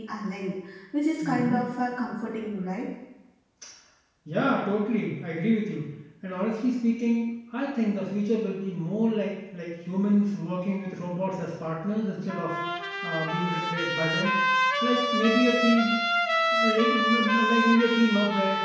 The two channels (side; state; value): both; identical; correlation 1.00